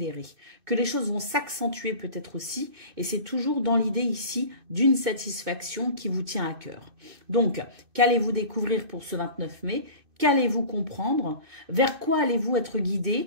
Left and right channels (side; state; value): left; late; 2.6 ms